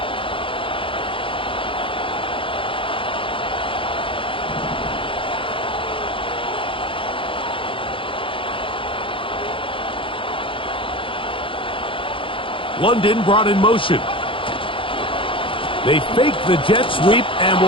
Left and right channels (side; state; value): right; late; 0.25 ms